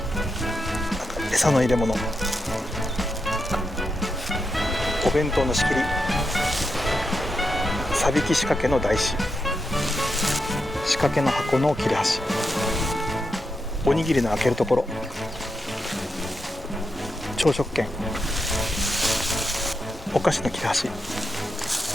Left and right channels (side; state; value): both; normal; correlation 0.86